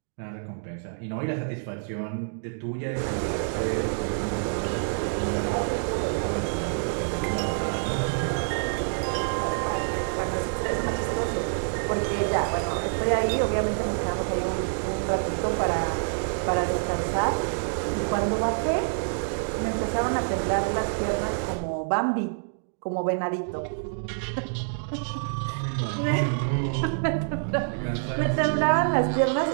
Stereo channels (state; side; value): silent; left; digital silence